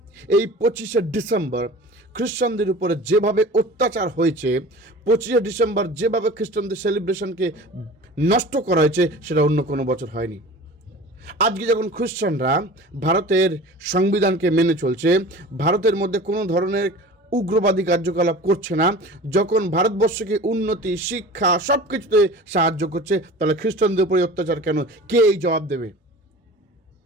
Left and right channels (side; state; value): both; normal; correlation 0.39